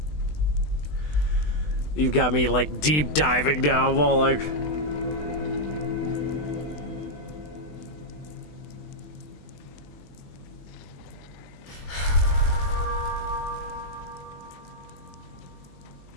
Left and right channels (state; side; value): late; right; 20 ms